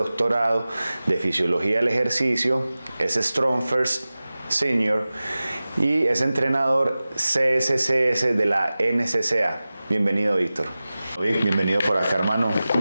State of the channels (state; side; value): inverted; both; correlation -0.97